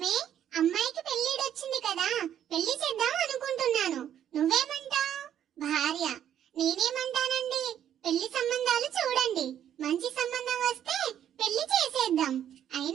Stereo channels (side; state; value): left; quieter; 10.2 dB